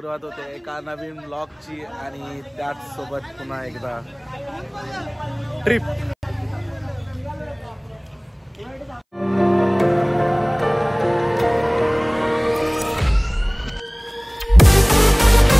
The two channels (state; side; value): identical; both; correlation 1.00